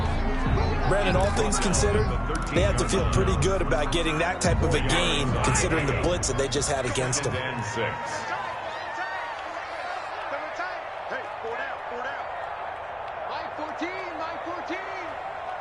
Brandon, all things considered, they have to feel pretty good about getting that type of a gain, considering the blitz that they just had against them.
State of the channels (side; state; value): both; identical; correlation 1.00